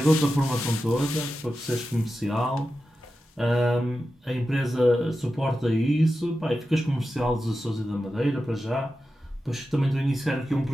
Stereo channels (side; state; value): both; normal; correlation 0.91